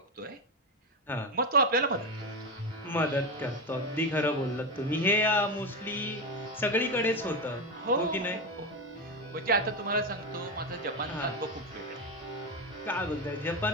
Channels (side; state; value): both; normal; correlation 0.14